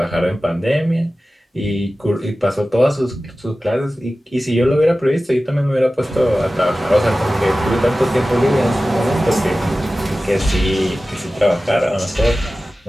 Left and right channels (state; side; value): normal; both; correlation 0.95